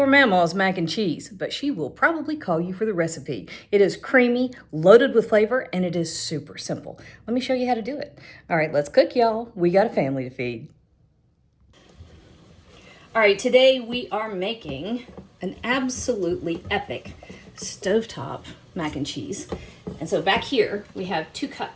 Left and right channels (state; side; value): identical; both; correlation 1.00